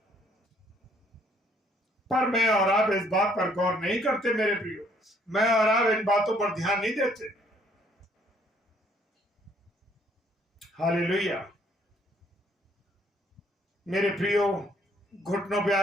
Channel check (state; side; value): normal; both; correlation 0.64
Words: पर मैं और आप इस बात पर गौर नहीं करते मेरे प्रियो, मैं और आप इन बातों पर ध्यान नहीं देते। हालेलुया। मेरे प्रियो, घुटनों पे